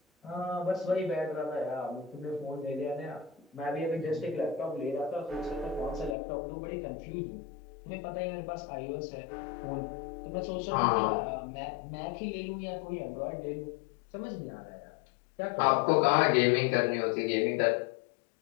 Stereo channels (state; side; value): drops out; right; at 6.2 s